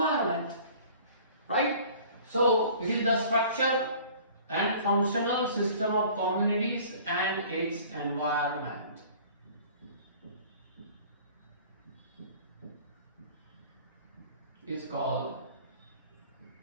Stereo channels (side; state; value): both; inverted; correlation -0.48